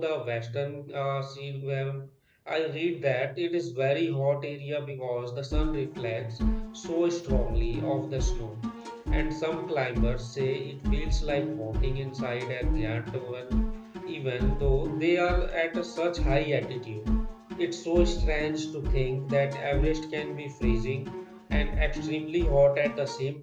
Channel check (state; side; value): identical; both; correlation 1.00